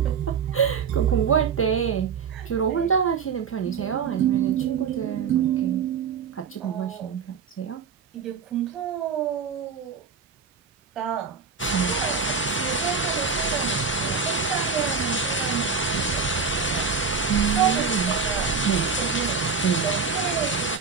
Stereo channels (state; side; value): quieter; left; 5.6 dB